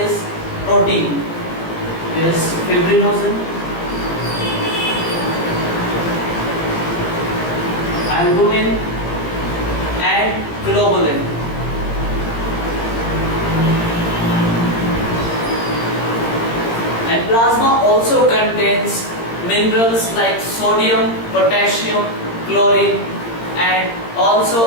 protein. There is fibrinogen, albumin, and globulin. And plasma also contains minerals like sodium, potassium, chlorine, and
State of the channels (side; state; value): right; late; 17 ms